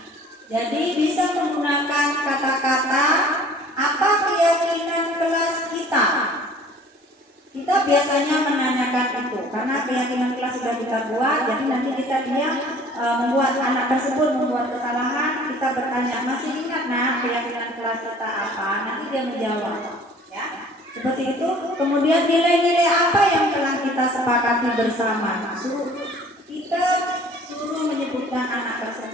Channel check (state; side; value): normal; both; correlation 0.51